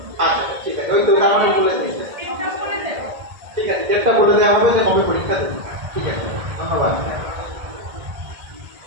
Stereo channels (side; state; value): left; late; 1.7 ms